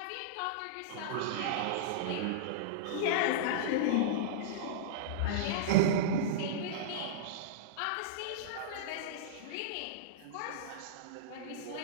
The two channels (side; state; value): both; different; correlation -0.03